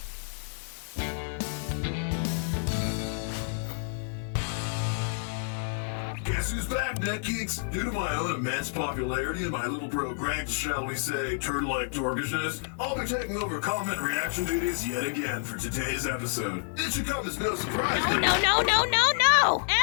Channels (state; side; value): silent; right; digital silence